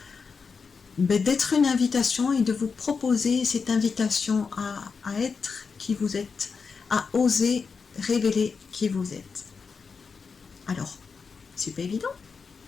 d'être une invitation et de vous proposer cette invitation à être qui vous êtes, à oser révéler qui vous êtes. Alors, c'est pas évident,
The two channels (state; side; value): quieter; right; 5.3 dB